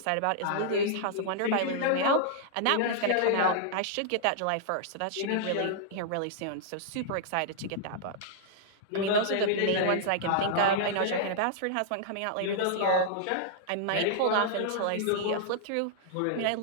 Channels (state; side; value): different; both; correlation -0.01